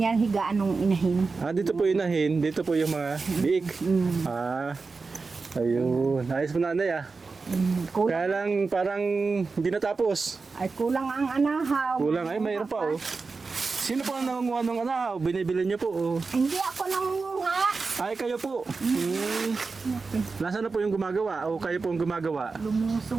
higaan ng inahin. Dito po yung nahin, dito po yung mga biik. Ayun. Ayos po nanay Kulang, Kaya lang parang hindi natapos. ay kulang ang anahaw. Kulang. Ay, mayroon pa Sino po ang nangunguha ng anahaw? Binibili niyo po Hindi ako nangunguha. Ay, kayo po. Nasaan na po yung gumagawa? O kayo po ang gumagawa?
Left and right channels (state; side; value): quieter; left; 4.3 dB